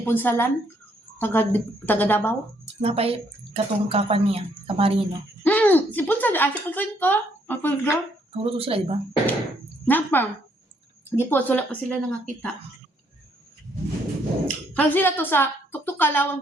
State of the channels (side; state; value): both; normal; correlation 0.70